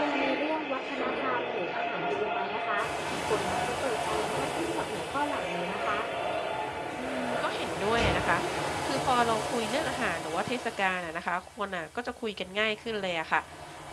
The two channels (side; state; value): both; identical; correlation 1.00